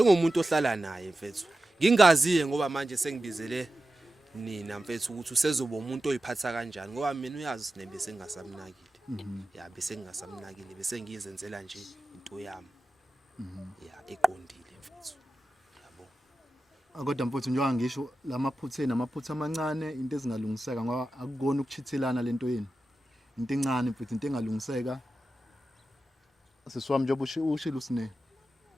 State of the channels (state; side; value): normal; both; correlation 0.93